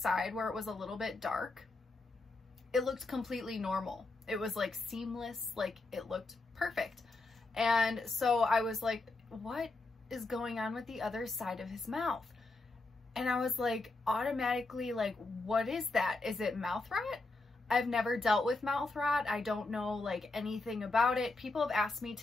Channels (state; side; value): quieter; right; 3.3 dB